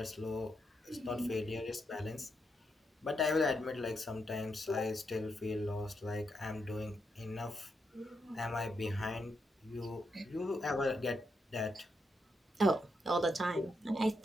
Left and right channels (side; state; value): both; normal; correlation 0.82